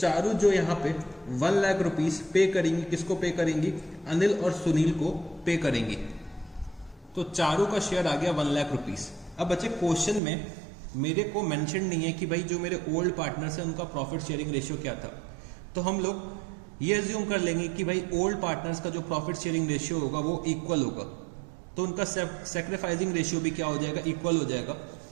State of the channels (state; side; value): drops out; left; at 10.2 s